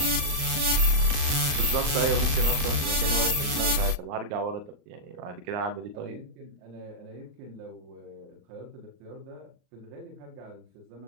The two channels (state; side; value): late; left; 36 ms